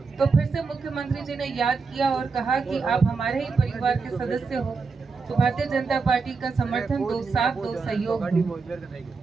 फिर से मुख्यमंत्री जी ने याद किया और कहा कि आप हमारे ही परिवार के सदस्य हो, तो भारतीय जनता पार्टी का समर्थन दो, साथ दो, सहयोग दो।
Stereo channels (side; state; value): left; quieter; 4.7 dB